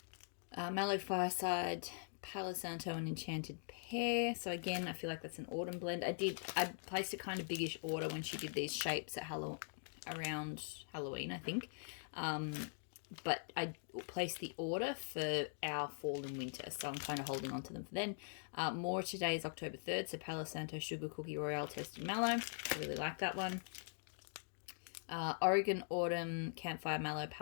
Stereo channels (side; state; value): right; silent; digital silence